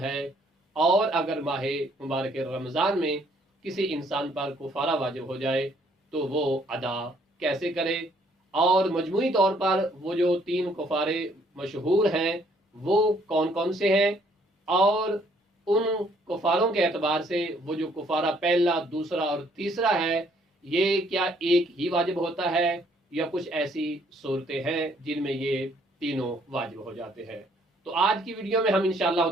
और अगर माह मुबारक रमज़ान में किसी इंसान पर कुफारा वाजिब हो जाए तो वो अदा कैसे करे, और मजमूई तौर पर वो जो 3 कुफारे मशहूर हैं वो कौन कौन से हैं, और उन कुफारों के एतबार से वो जो कुफारा पहला, दूसरा और तीसरा है ये क्या एक ही वाजिब होता है या कुछ ऐसी सूरतें हैं जिनमें ये तीनों वाजिब हो जाते हैं। तो आज की वीडियो में हम इंशाअल्लाह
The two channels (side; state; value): both; normal; correlation 0.65